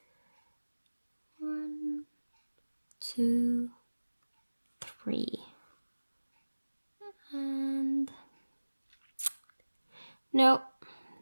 1, 2, 3, and no,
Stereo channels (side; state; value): both; inverted; correlation -1.00